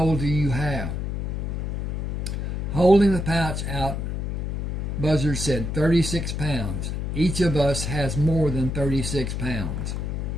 do you have? Holding the pouch out, Buzzard said, 36 pounds. Each of us has more than 36 pounds.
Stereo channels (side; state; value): left; noise; hum, 2 dB below the sound